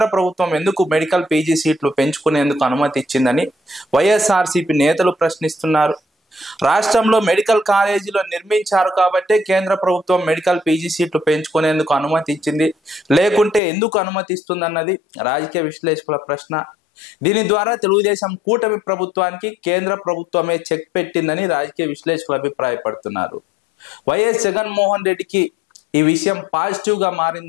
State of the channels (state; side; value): drops out; right; at 13.6 s